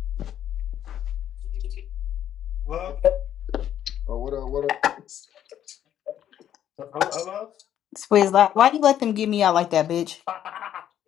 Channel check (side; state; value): right; quieter; 10.6 dB